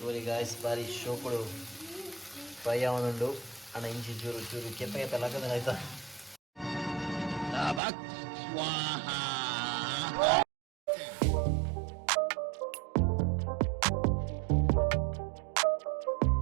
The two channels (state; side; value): drops out; left; at 7.8 s